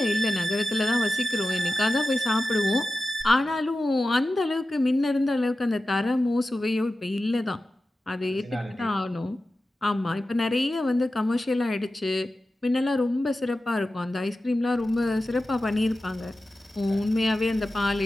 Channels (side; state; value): both; normal; correlation 0.94